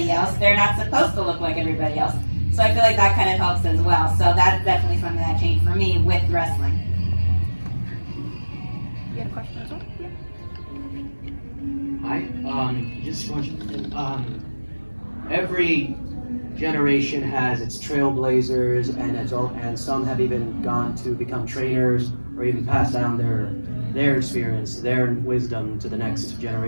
else. They're not supposed to look like everybody else. So I feel like that kind of helps as well. So that's definitely something that changed for me with wrestling. You had a question as well? Yeah. Hi, just one. Every generation has its trailblazers, and some have even gone to become trainers or even pass down their experience, their wisdom to the next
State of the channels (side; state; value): both; inverted; correlation -1.00